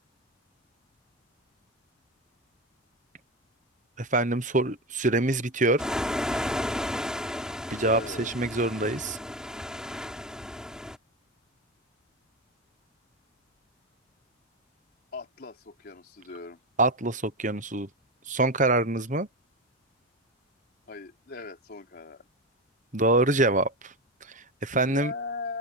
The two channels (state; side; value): normal; both; correlation 0.19